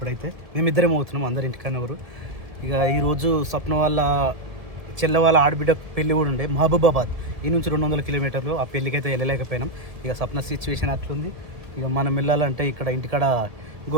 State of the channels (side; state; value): left; late; 1.7 ms